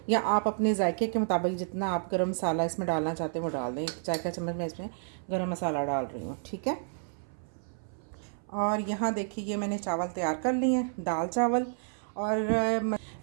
या आप अपने जायके के मुताबिक जितना आप गरम मसाला इसमें डालना चाहते हैं वो डाल दें। 1 चाय का चम्मच मैं इसमें गरम मसाला डाल रही हूँ, ठीक है। और यहाँ देखिए ये मैंने चावल तैयार कर लिए हैं, दाल चावल। और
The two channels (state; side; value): silent; left; 57 dB below the other